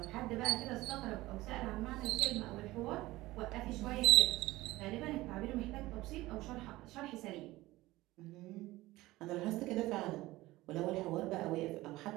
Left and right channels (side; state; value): left; quieter; 18.3 dB